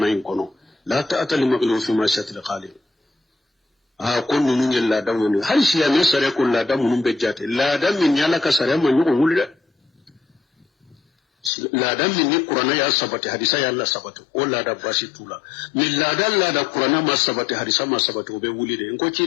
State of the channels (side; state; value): right; drops out; at 11.5 s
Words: in kono la ta'ata li maghlu fi ma shatil khaliq kon nunu ngel la da woni hal shi ya me sare ko la da munun be jate la da min yala ka sare man yugo wulde la da min ni qur'ana ya sabati hadisa ya Allah sabatu o la da bashi tula min la da qur'ana ma sabati hadisa ma sabatu be wulide en ko ci